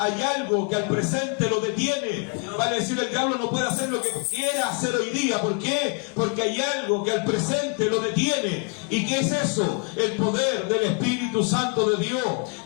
algo que al presente lo detiene. Vale decir, el diablo no puede hacer lo que quiera hacer hoy día. ¿Por qué? Porque hay algo que al presente lo detiene. ¿Y qué es eso? El poder del Espíritu Santo de Dios,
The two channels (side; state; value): right; quieter; 35.4 dB